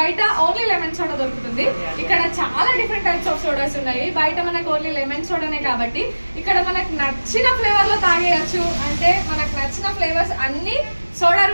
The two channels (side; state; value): both; inverted; correlation -1.00